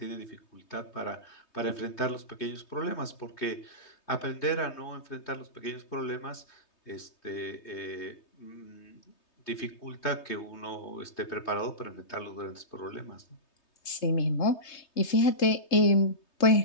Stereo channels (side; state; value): right; late; 3.2 ms